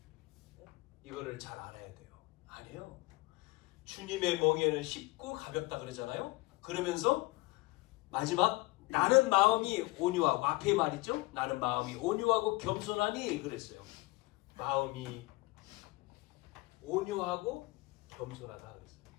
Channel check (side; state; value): right; quieter; 22.3 dB